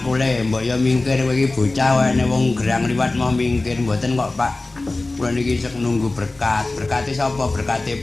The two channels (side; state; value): right; quieter; 3.1 dB